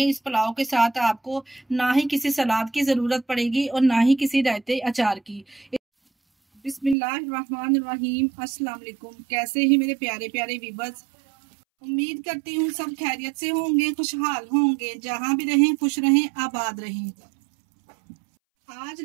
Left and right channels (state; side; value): drops out; left; at 7.0 s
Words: इस पुलाव के साथ आपको ना ही किसी सलाद की जरूरत पड़ेगी और ना ही किसी रायते अचार की। बिस्मिल्लाहिर्रहमानिर्रहीम। अस्सलाम वालेकुम। कैसे ही मेरे प्यारे प्यारे व्यूअर्स, उम्मीद करती हूँ सब खैरियत से होंगे, खुशहाल होंगे। जहाँ भी रहें खुश रहें, आबाद रहें। आज